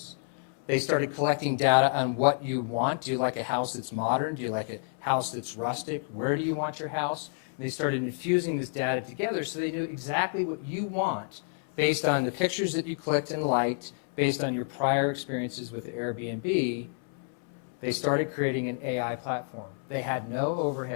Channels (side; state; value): right; silent; 58 dB below the other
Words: They started collecting data on what you want. Do you like a house that's modern? Do you like a house that's rustic? Where do you want your house? And they started infusing this data together so they knew exactly what you want based on the pictures that you clicked and liked, based on your prior experiences with Airbnb. They started creating an AI platform. They had no